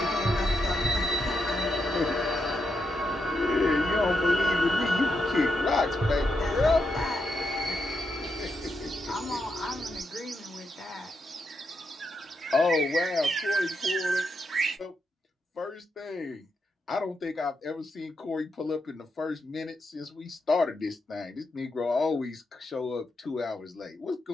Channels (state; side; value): normal; both; correlation 0.83